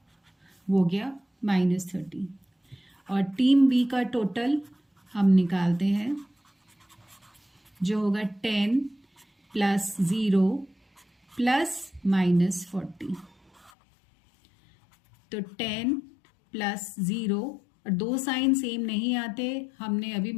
वो गया -30। और टीम बी का टोटल हम निकालते हैं, जो होगा 10 + 0 + -40। तो 10 + 0, और दो साइन सेम नहीं आते, हमने अभी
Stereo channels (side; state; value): right; drops out; at 13.7 s